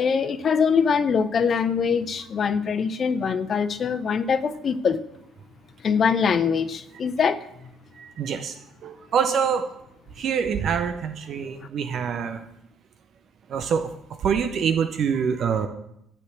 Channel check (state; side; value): normal; both; correlation 0.68